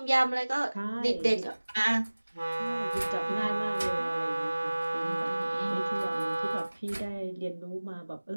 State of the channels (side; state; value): both; inverted; correlation -1.00